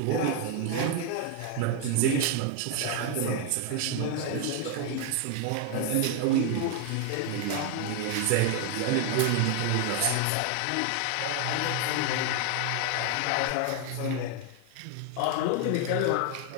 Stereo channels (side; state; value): both; different; correlation 0.01